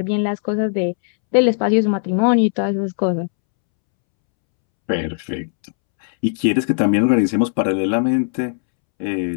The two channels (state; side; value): silent; right; 67 dB below the other